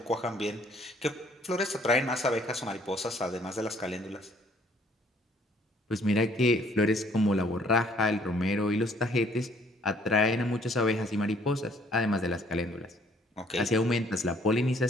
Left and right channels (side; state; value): both; normal; correlation 0.62